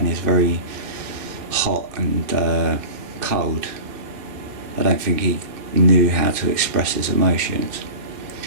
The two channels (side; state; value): left; late; 2.3 ms